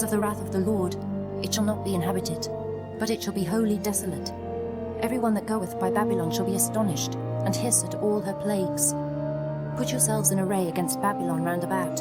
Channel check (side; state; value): both; identical; correlation 1.00